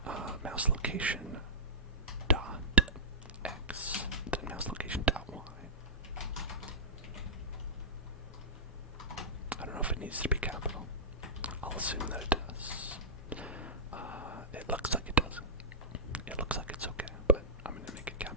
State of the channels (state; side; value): normal; both; correlation -0.14